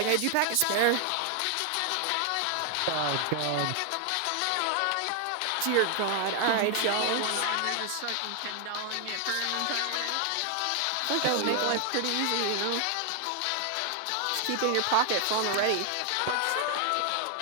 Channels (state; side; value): different; both; correlation 0.00